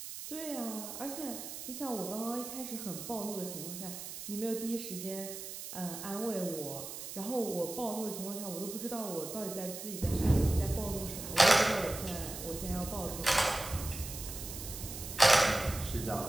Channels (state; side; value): noise; right; hiss, 9 dB below the sound